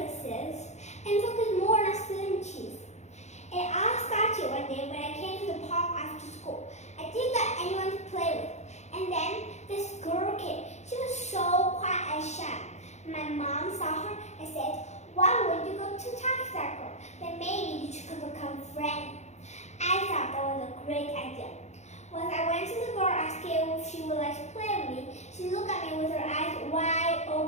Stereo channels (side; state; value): right; late; 0.33 ms